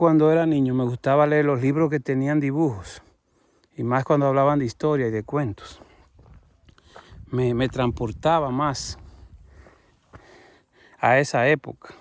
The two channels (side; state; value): both; identical; correlation 1.00